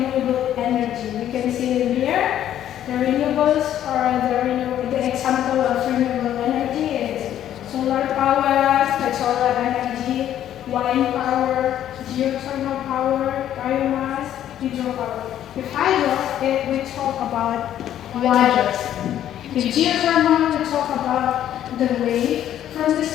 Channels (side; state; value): right; quieter; 11.2 dB